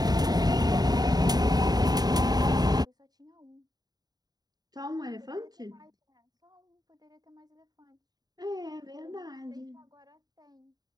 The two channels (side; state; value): left; late; 0.19 ms